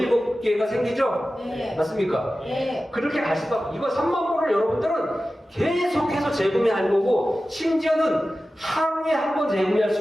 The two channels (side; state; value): both; normal; correlation 0.95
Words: 생기죠? 네. 맞습니까? 네. 그렇게 갈 수밖에. 이거 3만 불을 여러분들은 계속해서 재구매할 거고 심지어는 하루에 한 번 재구매할